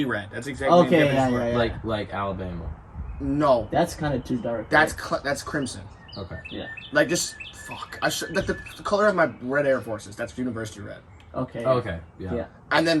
red. That's exactly okay. the difference. Yeah. Like Alabama. No. That's kind of too dark. That's crimson. Okay. Yeah. Just fuck. The color of my red Air Forces. That's university red. Okay. Okay. Yeah. And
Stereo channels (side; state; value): both; identical; correlation 1.00